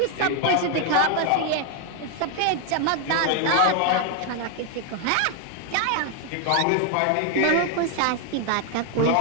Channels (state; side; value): different; both; correlation 0.01